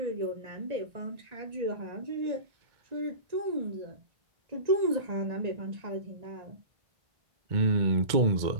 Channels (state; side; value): late; left; 2.1 ms